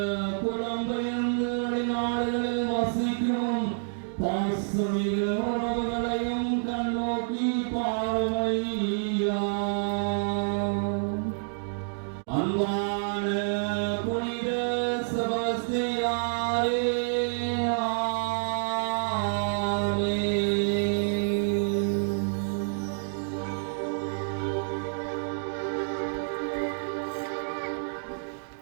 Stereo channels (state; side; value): silent; left; digital silence